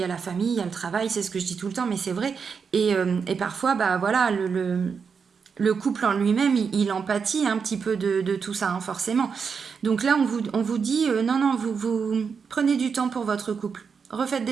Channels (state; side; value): quieter; left; 5.9 dB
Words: a la famille, il y a le travail, c'est ce que je dis tout le temps, mais c'est vrai, et parfois bah voilà, le couple en lui-même, il empathie un petit peu de tout ça, hein, forcément. Donc là on vous dit, non, vous prenez du temps pour votre couple, refaites